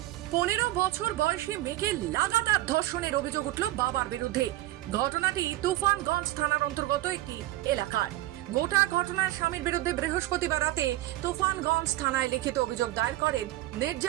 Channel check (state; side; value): quieter; left; 16.2 dB